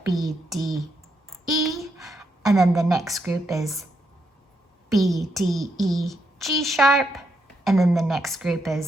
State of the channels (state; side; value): normal; both; correlation 0.80